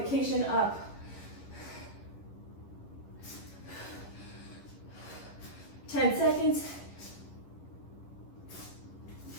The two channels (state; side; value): late; right; 11 ms